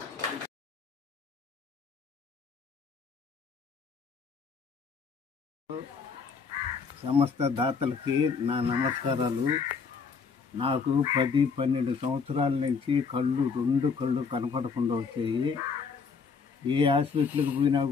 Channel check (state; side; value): quieter; right; 5.4 dB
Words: సమస్త దాతలకి నా నమస్కారాలు. నాకు 10-12 సంవత్సరాల నుంచి రెండు కళ్ళు కనపడకుండా వచ్చాయి. ఏ హాస్పిటల్కి పోయినా